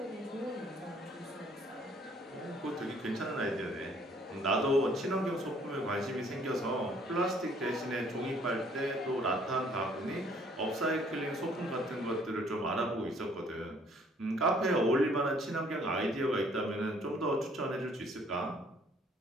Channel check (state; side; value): normal; both; correlation 0.61